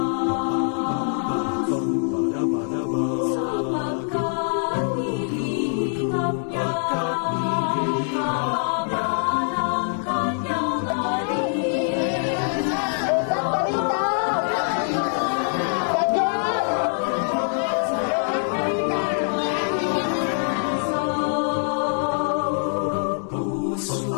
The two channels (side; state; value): right; silent; 63 dB below the other